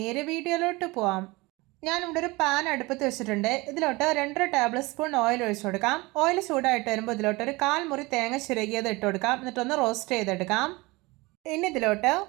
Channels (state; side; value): quieter; left; 23.3 dB